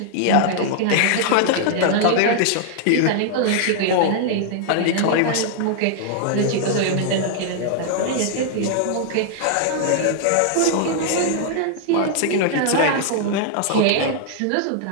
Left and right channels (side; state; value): both; different; correlation -0.01